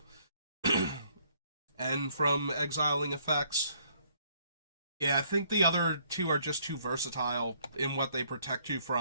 And from exiling effects. Yeah, I think the other two are just too versatile in what they protect you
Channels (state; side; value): inverted; both; correlation -0.66